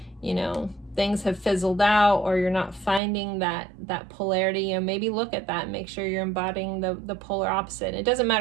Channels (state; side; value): drops out; left; at 3.0 s